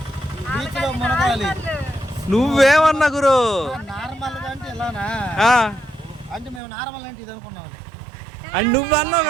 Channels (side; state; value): left; drops out; at 6.6 s